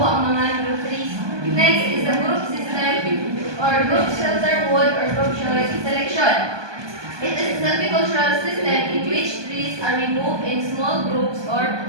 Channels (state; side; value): late; left; 1.2 ms